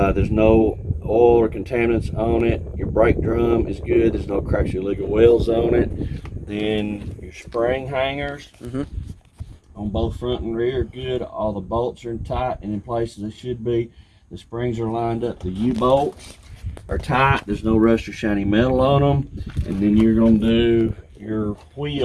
no oil or contaminants on it. Your brake drum is good. There's no cracks or illegal welds on it. Then your spring hangers on both front and rear are good. All the bolts are tight and in place as they should be. The springs are lined up. The U-bolts are tight. There's no rust or shiny metal on them. And then you're going to do your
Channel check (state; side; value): identical; both; correlation 1.00